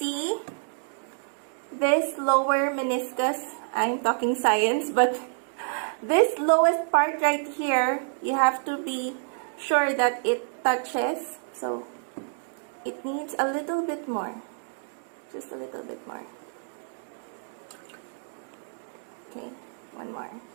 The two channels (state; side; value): silent; left; digital silence